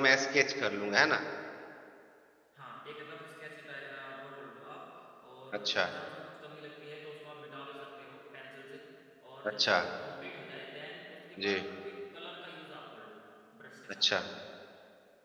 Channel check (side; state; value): both; identical; correlation 1.00